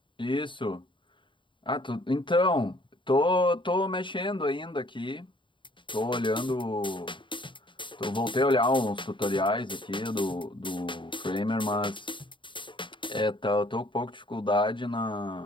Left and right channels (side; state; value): right; late; 0.24 ms